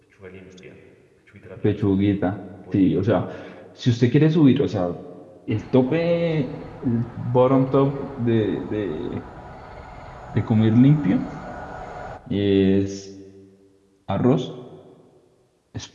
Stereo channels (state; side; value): identical; both; correlation 1.00